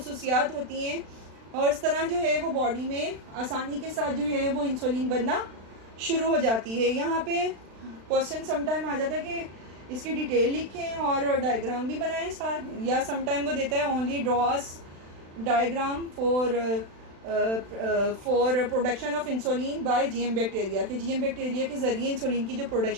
होती हैं। और इस तरह जो है वो बॉडी में आसानी के साथ जो है वो इंसुलिन बनना शुरू हो जाती है। यहाँ पे क्वेश्चन समटाइम आ जाता है कि इसकी डिटेल लिखें और डायग्राम भी बनाएं साथ, या समटाइम वो देता है only draws diagram for production of insulin by GM bacteria, कि जीएम बैक्टीरिया के ज़रिए इंसुलिन की जो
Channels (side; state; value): left; late; 36 ms